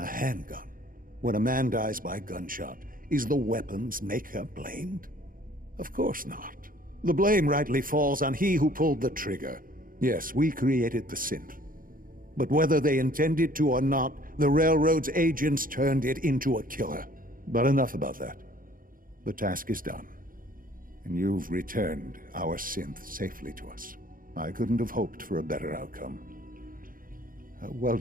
handgun. When a man dies by gunshot, is the weapon's maker blamed? Of course not. The blame rightly falls on he who pulled the trigger. Yes, we created the synth. But whether they intended to or not, the Railroad's agents turned it into a killer. But enough about that. The task is done. And you've returned our synth safely to us. I couldn't have hoped for a better outcome. Well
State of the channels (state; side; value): late; left; 0.41 ms